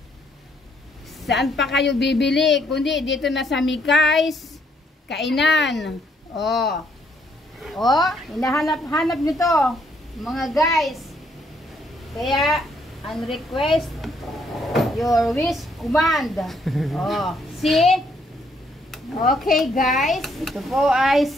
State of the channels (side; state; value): both; normal; correlation 0.70